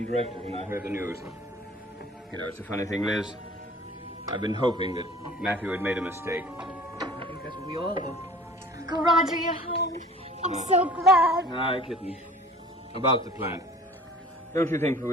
directly when I heard the news. You know, it's a funny thing, Liz. I've been hoping that Matthew had made a mistake. I think that's what we all do. Uncle Roger, you're home. I'm so glad. Aye, kitten. About the plant. Don't you think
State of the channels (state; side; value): normal; both; correlation 0.47